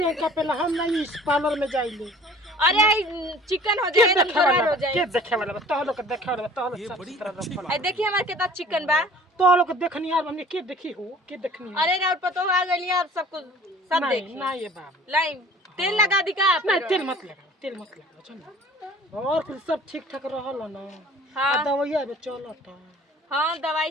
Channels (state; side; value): normal; both; correlation 0.48